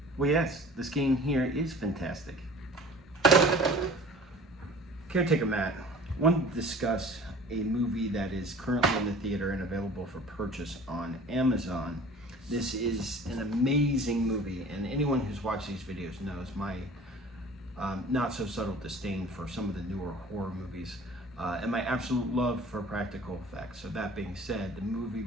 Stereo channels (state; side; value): normal; both; correlation 0.46